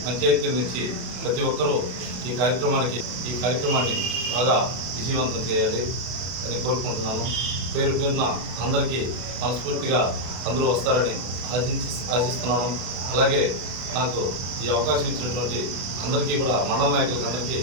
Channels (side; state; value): left; late; 32 ms